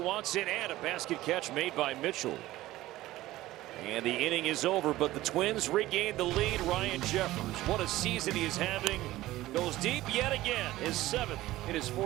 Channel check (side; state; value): left; quieter; 16.5 dB